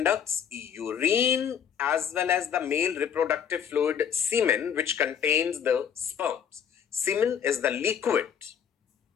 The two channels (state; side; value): quieter; right; 8.0 dB